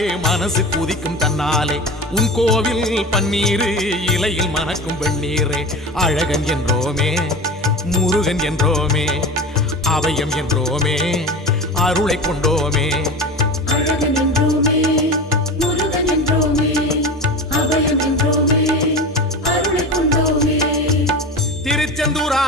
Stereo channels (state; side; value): normal; both; correlation 0.30